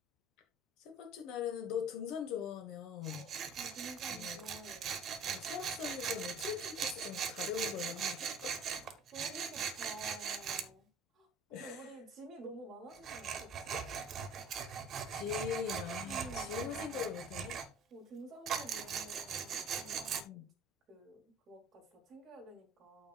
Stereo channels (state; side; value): normal; both; correlation 0.48